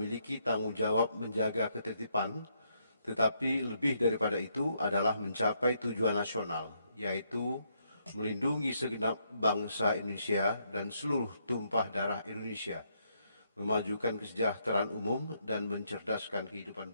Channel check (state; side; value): inverted; both; correlation -0.75